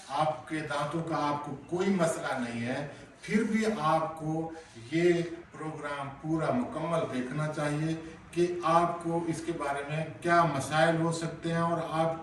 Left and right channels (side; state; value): both; identical; correlation 1.00